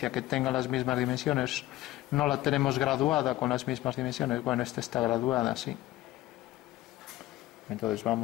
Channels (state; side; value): quieter; right; 16.1 dB